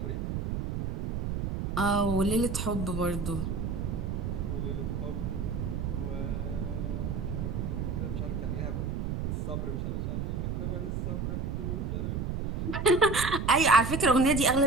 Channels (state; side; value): noise; right; rumble, 2 dB below the sound